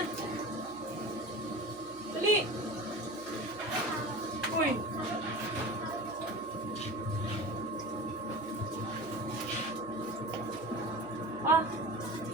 Dali. Uy. Ah.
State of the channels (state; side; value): noise; right; hum, 23 dB below the sound